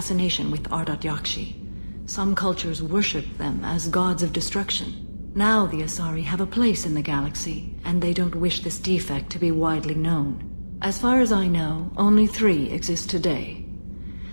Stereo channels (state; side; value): inverted; both; correlation -1.00